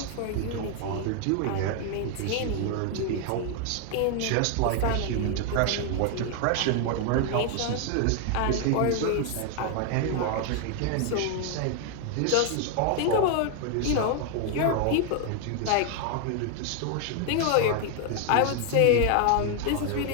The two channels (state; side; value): different; both; correlation 0.01